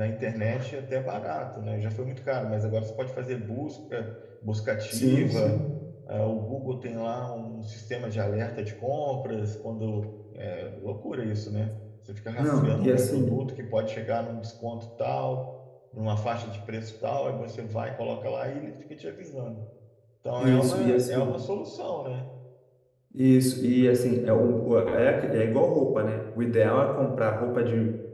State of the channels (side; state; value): both; identical; correlation 1.00